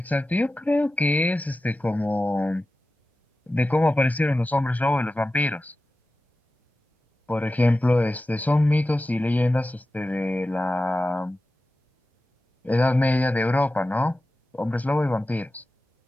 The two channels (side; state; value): both; normal; correlation 0.94